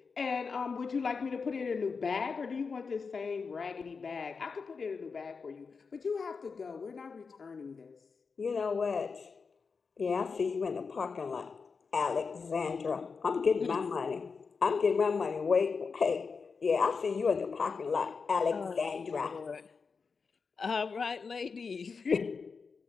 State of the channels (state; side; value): quieter; right; 5.1 dB